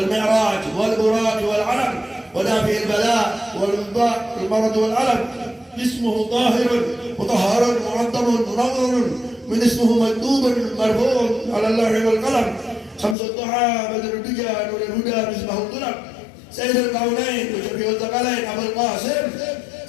mi'raj wal buraq wal alam wa dafi'il bala wal mudda' wal marad wal alam. اسمه طاهر مطهر معظم منور من اسمه مكتوب مرفوع على اللوح والقلم شمس الضحى بدر الدجى نور الهدى مصباح الظلم سيد الكونين وشفيع الثقلين ابو القاسم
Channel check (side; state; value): right; drops out; at 13.2 s